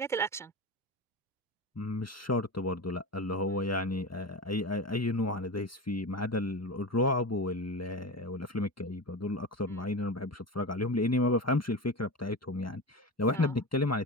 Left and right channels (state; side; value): normal; both; correlation 0.25